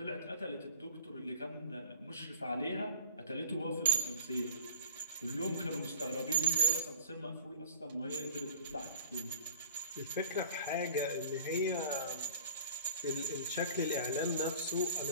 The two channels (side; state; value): both; inverted; correlation -0.50